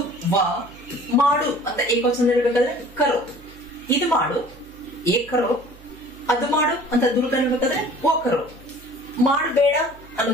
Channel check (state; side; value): noise; right; hum, 22 dB below the sound